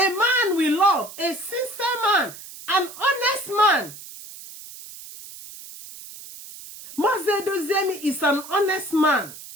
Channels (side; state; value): right; noise; hiss, 15 dB below the sound